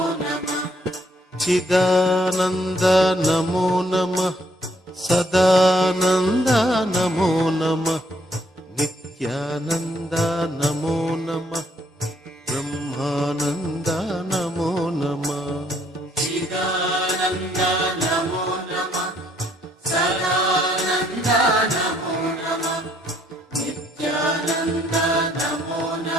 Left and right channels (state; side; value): normal; both; correlation 0.68